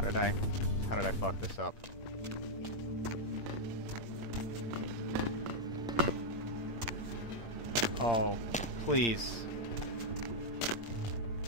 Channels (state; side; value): late; right; 8.7 ms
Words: How did I fuck this up? Oh, please.